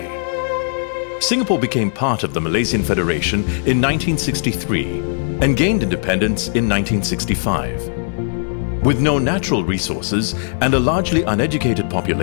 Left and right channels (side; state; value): right; silent; digital silence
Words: Singapore became part of the Malaysian Federation in 1963 and gained independence in 1965. With no natural resources and a largely uneducated